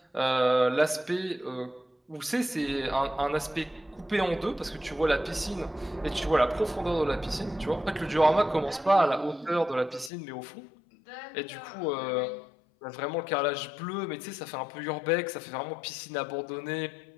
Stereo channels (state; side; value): drops out; right; at 10.1 s